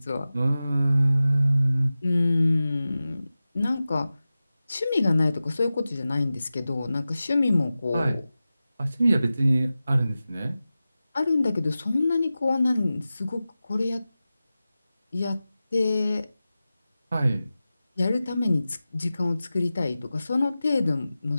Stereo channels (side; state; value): both; inverted; correlation -0.95